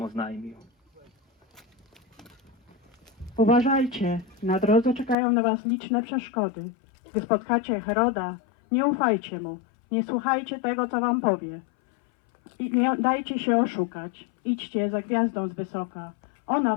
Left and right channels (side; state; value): right; drops out; at 5.2 s